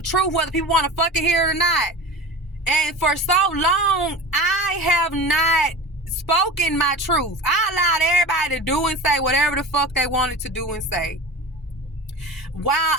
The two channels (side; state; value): both; normal; correlation 0.33